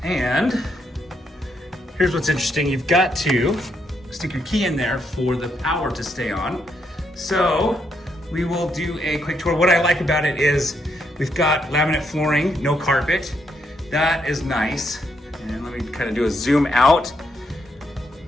And here's what's interesting. You've got to stick your key in there for the power to stay on. So we will do a quick tour. What I like about it is we've got laminate flooring, no carpet. That is nice. And let me kind of do a zoom out.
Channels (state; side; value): normal; both; correlation 0.77